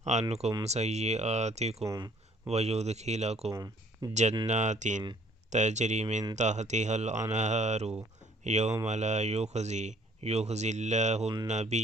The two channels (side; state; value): both; normal; correlation 0.59